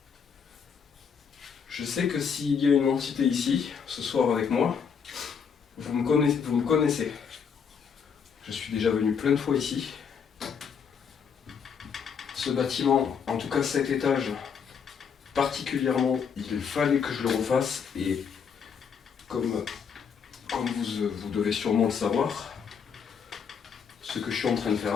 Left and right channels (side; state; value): right; quieter; 6.7 dB